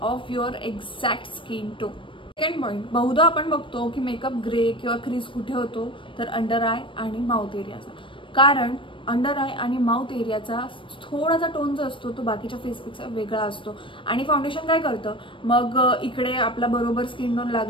of your exact skin tone. Second point, बहुधा आपण बघतो की मेकअप ग्रे किंवा क्रीज कुठे होतो तर अंडर आय आणि माउथ एरियाचा. कारण अंडर आय आणि माउथ एरियाचा थोडासा टोन जो असतो तो बाकीच्या फेसपेक्षा वेगळा असतो आणि फाउंडेशन काय करतं, मग इकडे आपला बरोबर स्किन टोन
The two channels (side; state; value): right; late; 0.25 ms